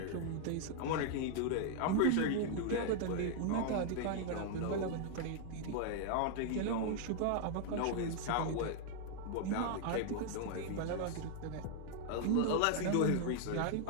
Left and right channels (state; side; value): different; both; correlation 0.00